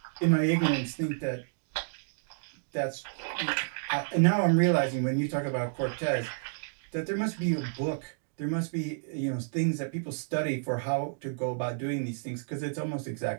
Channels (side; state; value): left; silent; digital silence